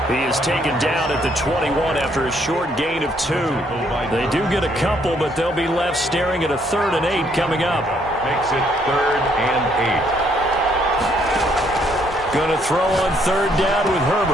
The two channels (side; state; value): both; normal; correlation 0.69